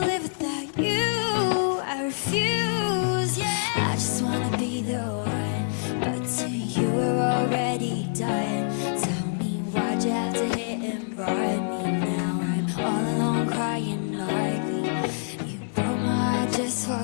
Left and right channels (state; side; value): silent; right; 61 dB below the other